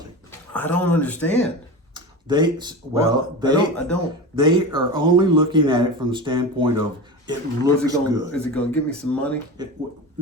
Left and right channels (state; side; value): normal; both; correlation 0.27